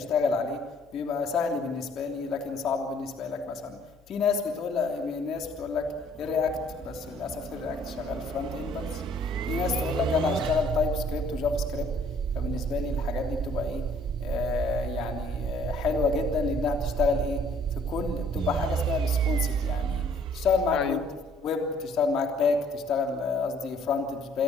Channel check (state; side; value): normal; both; correlation 0.60